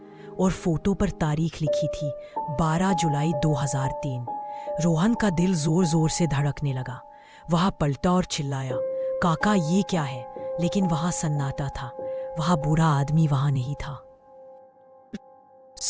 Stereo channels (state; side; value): identical; both; correlation 1.00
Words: और फोटो पर तारीख लिखी थी 12 जुलाई 2003। रोहन का दिल जोर जोर से धड़कने लगा। वह पलटा और चिल्लाया, काका, ये क्या है? लेकिन वहां सन्नाटा था। वहां बूढ़ा आदमी वहां नहीं था।